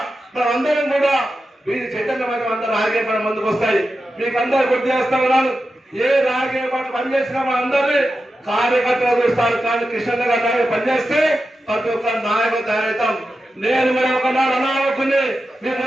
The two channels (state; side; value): normal; both; correlation 0.91